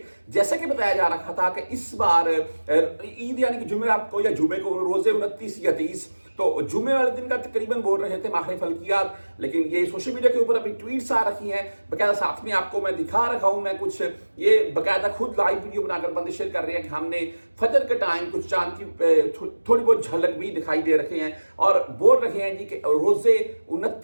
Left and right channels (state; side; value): inverted; both; correlation -1.00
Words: जैसा कि बताया जा रहा था कि इस बार ईद यानी कि जुमेरात को या जुमे को रोजे 29 या 30, तो जुमे वाले दिन का तकरीबन बोल रहे थे माहिर फल्कियात, लेकिन ये सोशल मीडिया के ऊपर अभी ट्वीट्स आ रखी हैं बकायदा। साथ में आपको मैं दिखा रखा हूं, मैं कुछ ये बकायदा खुद लाइव वीडियो बनाकर बंदे शेयर कर रहे हैं कि हमने फजर के टाइम कुछ चांद की थोड़ी बहुत झलक भी दिखाई दे रखे हैं और बोल रहे हैं जी कि रोजे